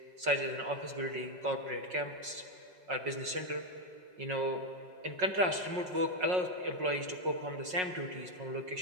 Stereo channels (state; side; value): late; left; 5.5 ms